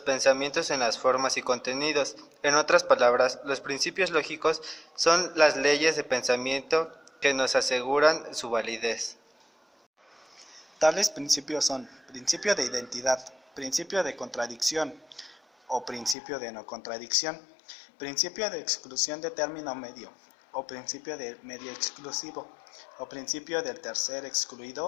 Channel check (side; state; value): right; drops out; at 16.2 s